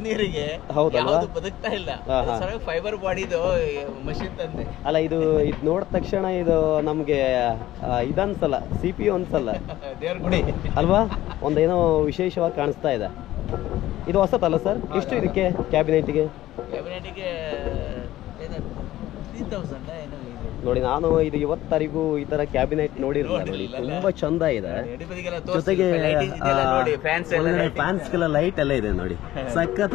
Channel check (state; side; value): quieter; right; 14.9 dB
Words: ನೀರಿಗೆ ಹೌದಲ್ವಾ? ಯಾವುದು ಬದುಕ್ತಾ ಇಲ್ಲ. ಫೈಬರ್ ಬಾಡಿದು ಮಷಿನ್ ತಂದೆ. ಅಲ್ಲ, ಇದು ನೋಡಿದ ತಕ್ಷಣ ಇದು ನಮ್ಗೆ ಇದನ್ಸಲ್ಲ, CPU ಅನ್ಸಲ್ಲ, ದೇವ್ರ ಗುಡಿ ಅಲ್ವಾ? ಒಂದೇನೋ ವಿಶೇಷವಾಗಿ ಕಾಣಿಸ್ತಾ ಇದೆ. ಇದು ಹೊಸತಲ್ಲ ಸರ್? ಎಷ್ಟು ಇದಕ್ಕೆ ಕ್ಯಾಬಿನೆಟ್ಗೆ? 3000 ಏನೋ ಇದೆ ನೋಡಿ. ನಾನು ಇದು ಇವತ್ತರಿಗೂ ಈ ತರ ಕ್ಯಾಬಿನೆಟ್ ನೋಡಿರಲಿಲ್ಲ. ನೋಡಿ, ತುಂಬಾ ಚಂದ ಇದೆ. ಜೊತೆಗೆ ಫ್ಯಾನ್ಸ್ಗೆಲ್ಲ ಲೈಟ್ ಎಲ್ಲ ಇದೆ ನೋಡಿ,